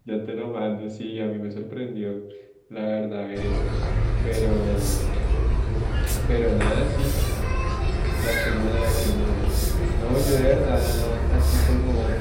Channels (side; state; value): both; identical; correlation 1.00